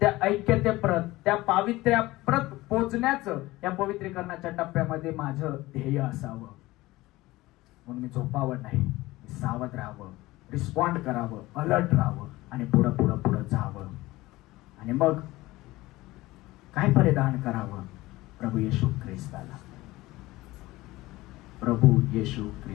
त्या ऐक्यतेप्रत, त्या पावित्र्याप्रत पोचण्याचं या पवित्रीकरणाच्या टप्प्यामध्ये माझं ध्येय असावं. म्हणून मी झोपावं नाही, मी सावध राहावं, रिस्पॉन्ड करावं, अलर्ट राहावं आणि पुढं पुढं पुढं जावं. आणि मग काय परिधान करावं? प्रभू येशू ख्रिस्ताला, प्रभू येशू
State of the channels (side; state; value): right; quieter; 18.9 dB